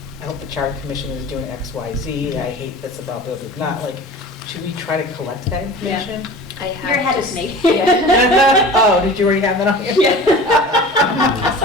I hope the Charter Commission is doing X, Y, Z, I hate this about blah, blah, blah. Not like, should we try to collect that information? I have You're ahead of just- me. Oh, did you already have that on here?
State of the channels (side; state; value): both; normal; correlation 0.38